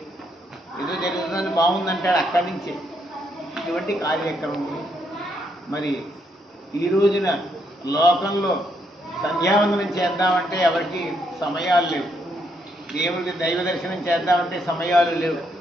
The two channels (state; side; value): normal; both; correlation 0.75